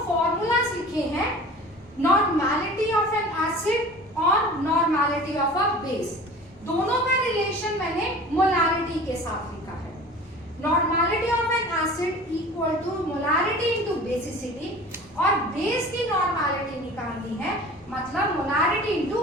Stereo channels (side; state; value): both; normal; correlation 0.41